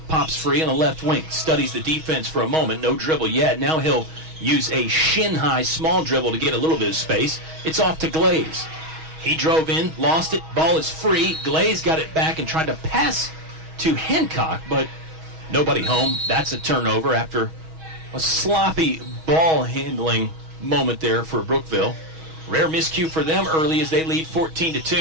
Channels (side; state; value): left; late; 6.3 ms